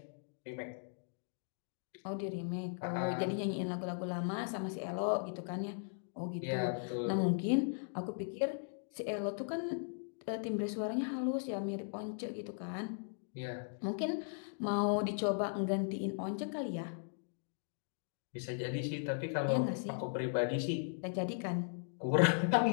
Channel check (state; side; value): silent; right; digital silence